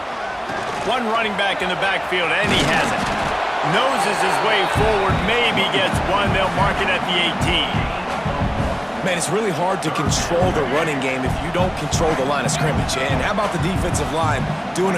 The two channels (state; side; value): identical; both; correlation 1.00